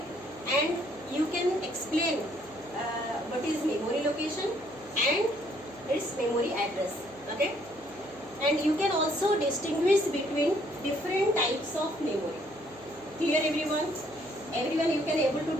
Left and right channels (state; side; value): noise; right; hum, 26 dB below the sound